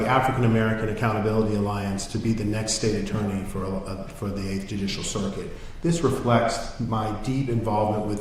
African American Accountability Alliance to be the next state attorney for the 8th Judicial Circuit. This reflects my deep involvement with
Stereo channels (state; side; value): identical; both; correlation 1.00